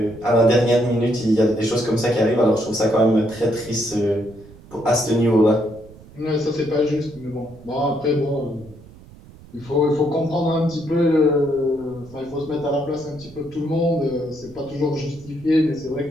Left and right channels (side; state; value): right; noise; rumble, 21 dB below the sound